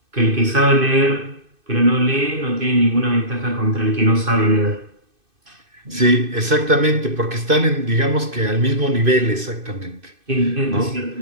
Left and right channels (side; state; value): left; late; 2.5 ms